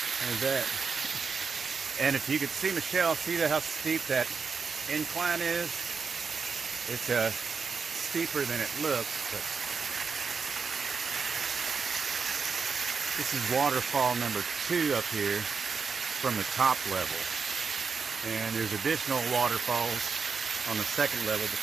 There's that. And if you could see Michelle, see how steep that incline is? It's steeper than it looks, but this is waterfall number 2 up here from the top level. And there's additional waterfalls on the second level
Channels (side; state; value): left; quieter; 5.3 dB